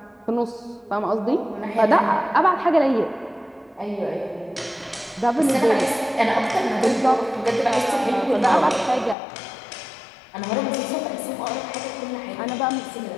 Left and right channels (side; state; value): right; drops out; at 9.2 s